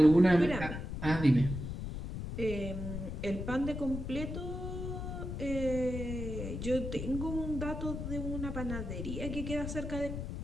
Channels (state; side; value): noise; left; rumble, 5 dB below the sound